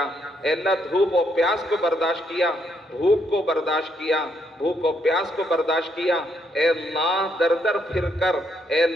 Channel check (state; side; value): normal; both; correlation 0.74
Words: اے اللہ دھوپ و پیاس کو برداشت کیا، بھوک کو برداشت کیا، بھوک و پیاس کو برداشت کیا، اے اللہ در در پھر کر، اے